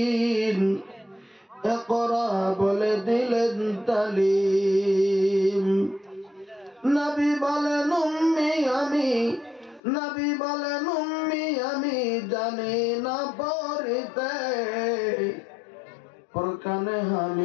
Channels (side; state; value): right; drops out; at 9.8 s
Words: ইকরা বলে দিলেন তালিম। নবী বলেন উম্মি আমি, নবী বলেন উম্মি আমি জানি না পড়তে। ফরকানে